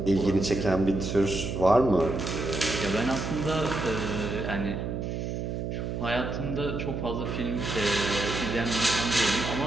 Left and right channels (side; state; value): right; noise; hum, 3 dB below the sound